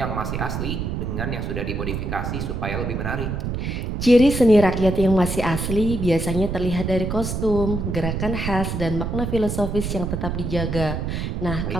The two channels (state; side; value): noise; right; rumble, 3 dB below the sound